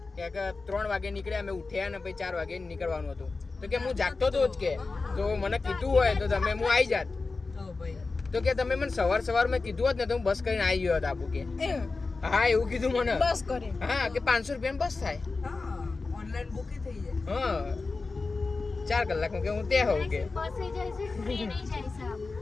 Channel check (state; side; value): quieter; right; 3.9 dB